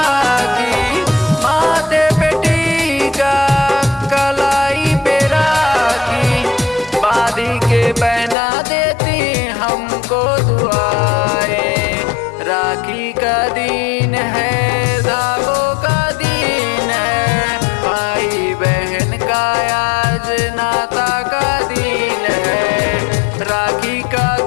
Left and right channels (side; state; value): right; drops out; at 8.3 s